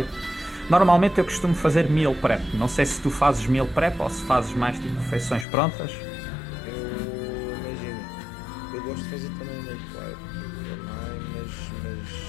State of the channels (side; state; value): right; drops out; at 5.5 s